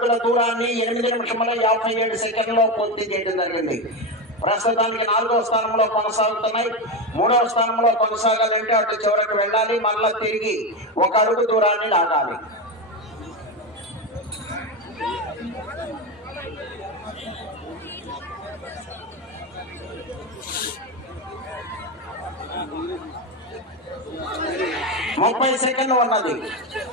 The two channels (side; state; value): both; normal; correlation 0.15